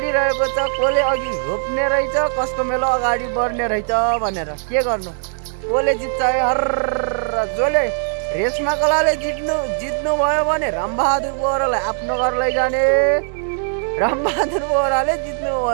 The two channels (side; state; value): left; silent; digital silence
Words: छ। कसले अघि रोप्ने रहेछ, कसको मेलो अगाडि बढ्ने रहेछ भनेर। के गर्नु, कसले जित्छ हर। जसले रेशमा कलाले जित्नु भयो भने रामबहादुर बोहरालाई आफ्नो घर लैजाने, रामबहादुर बोहराले जित्नु